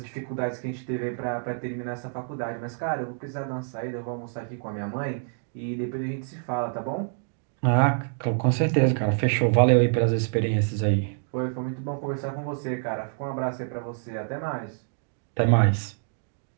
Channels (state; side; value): silent; left; digital silence